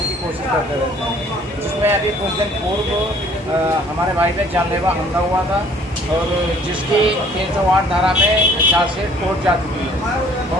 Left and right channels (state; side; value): normal; both; correlation 0.57